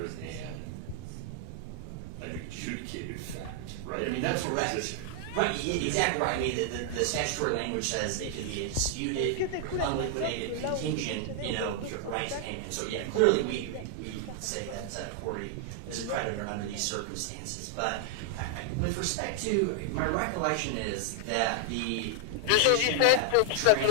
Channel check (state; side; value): different; both; correlation 0.00